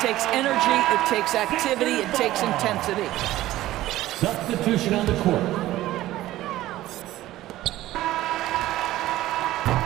energy, it takes activity, it takes intensity. Substitution on the court.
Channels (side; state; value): left; quieter; 15.4 dB